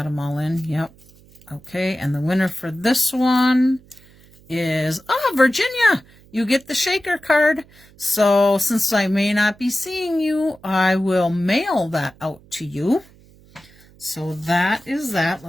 them all in. Yep. Okay, and the winner for this one is, Virginia, you get the shaker card. So since I may not be seeing you, I will mail that out to you. So that is that.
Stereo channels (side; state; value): right; noise; hum, 27 dB below the sound